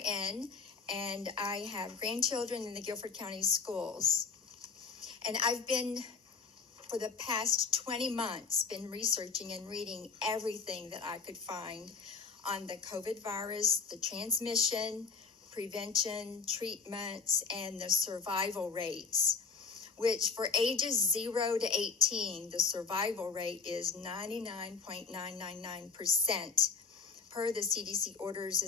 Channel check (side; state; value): right; quieter; 5.2 dB